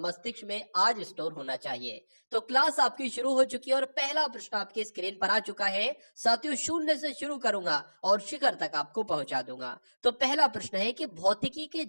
में आज स्टोर होना चाहिए। तो क्लास आपकी शुरू हो चुकी है और पहला प्रश्न आपकी स्क्रीन पर आ चुका है साथियों। शून्य से शुरू करूंगा और शिखर तक आपको पहुंचा दूंगा। तो पहला प्रश्न है कि भौतिकी के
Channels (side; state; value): both; inverted; correlation -1.00